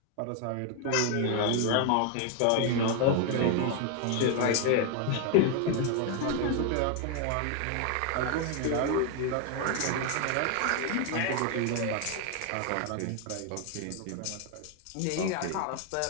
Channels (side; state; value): both; different; correlation 0.00